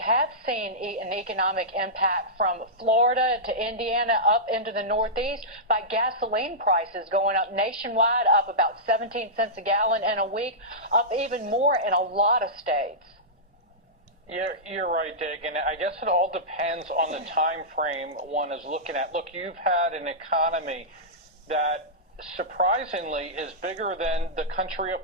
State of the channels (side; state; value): both; normal; correlation -0.14